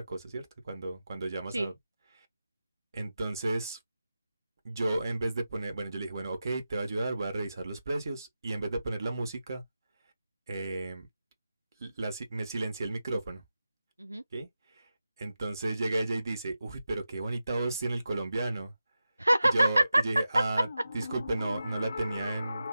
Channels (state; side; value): inverted; both; correlation -0.92